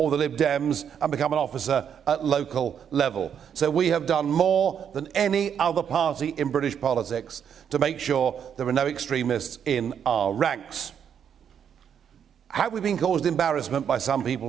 the Lib Dems and become an officer at local level. So we have done more than any other party in British politics to make sure there are no extremists in our ranks. Have we been caused embarrassment by some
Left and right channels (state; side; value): quieter; left; 8.0 dB